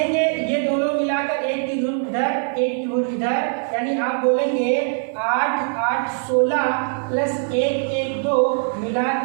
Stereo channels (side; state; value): left; silent; 64 dB below the other